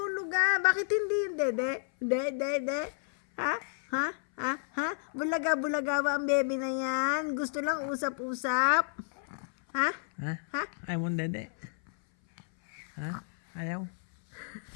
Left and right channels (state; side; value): silent; right; 56 dB below the other